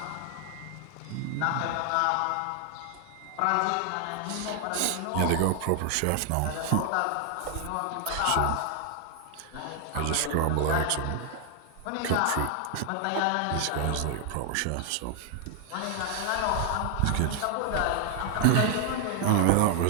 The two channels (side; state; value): both; different; correlation 0.00